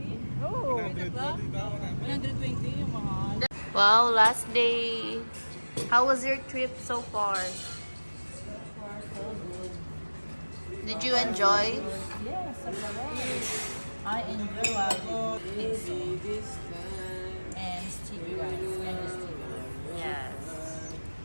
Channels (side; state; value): both; inverted; correlation -1.00